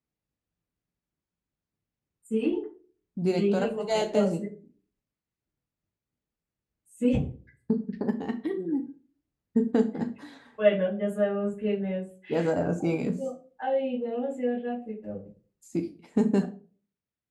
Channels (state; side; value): identical; both; correlation 1.00